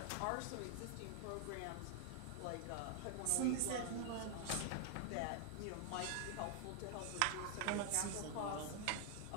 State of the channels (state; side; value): different; both; correlation 0.00